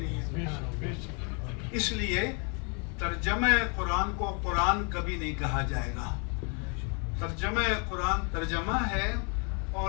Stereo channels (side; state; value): right; quieter; 36.2 dB